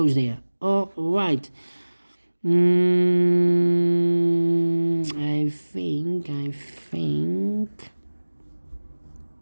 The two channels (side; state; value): both; inverted; correlation -1.00